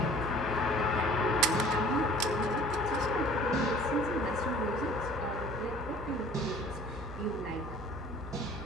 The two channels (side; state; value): right; noise; hum, 11 dB below the sound